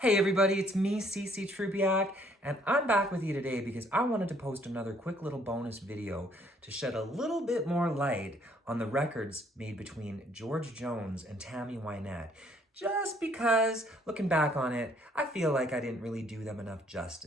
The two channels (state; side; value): normal; both; correlation 0.64